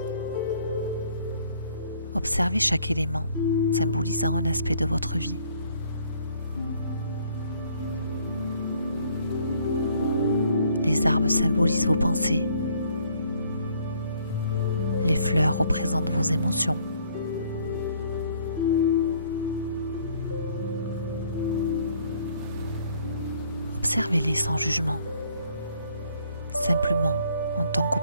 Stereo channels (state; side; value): inverted; both; correlation -0.62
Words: observez chaque élément symbolisant un aspect de votre vie. Les arbres symbolisent vos pensées. Les fleurs représentent vos émotions. Observez-les sans jugement, simplement en tant